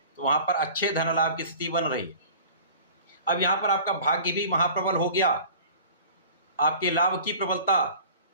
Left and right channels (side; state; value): both; inverted; correlation -0.43